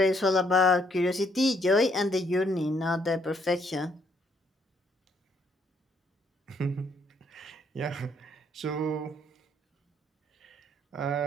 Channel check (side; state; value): both; normal; correlation 0.69